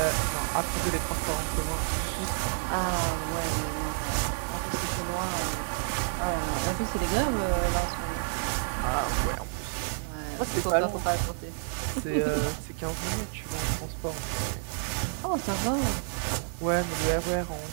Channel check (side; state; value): left; silent; digital silence